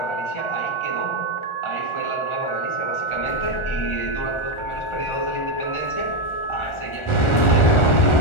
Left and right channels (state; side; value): late; right; 1.4 ms